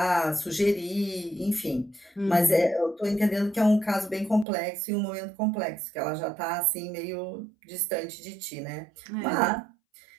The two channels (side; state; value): left; drops out; at 4.5 s